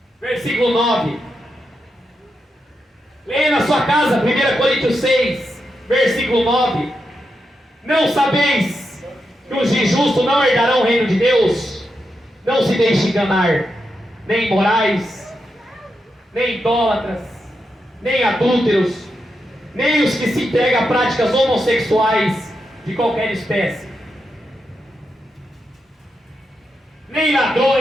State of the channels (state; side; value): normal; both; correlation 0.86